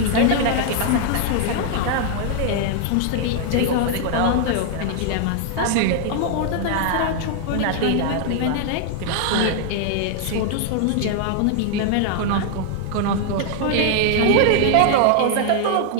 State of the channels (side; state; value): both; different; correlation 0.00